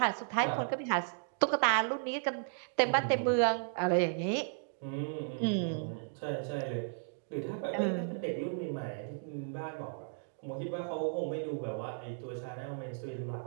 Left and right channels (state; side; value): silent; left; digital silence